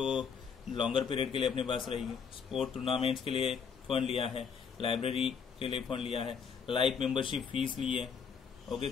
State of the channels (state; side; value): quieter; right; 6.4 dB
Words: लॉन्गर पीरियड के लिए अपने पास रहेगी। स्पोर्ट टूर्नामेंट्स के लिए फंड लिया है, लाइब्रेरी के लिए फंड लिया है, लाइफ मेंबरशिप फीस ली है, ओके,